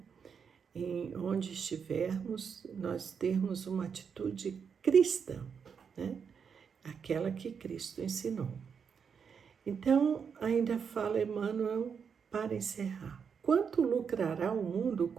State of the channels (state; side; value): quieter; left; 6.6 dB